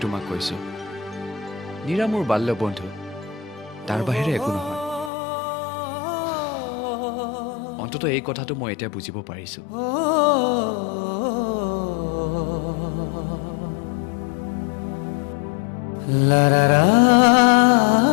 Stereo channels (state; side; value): drops out; right; at 5.1 s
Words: তোমাক কৈছোঁ, নীৰা মোৰ বাল্য বন্ধু, তাৰ বাহিৰে একো নহয়। অন্ততঃ এই কথাটো মই এতিয়া বুজিব পাৰিছোঁ। লা ৰা ৰা